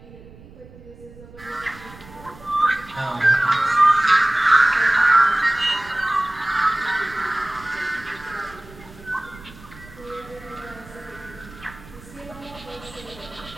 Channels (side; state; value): right; noise; rumble, 20 dB below the sound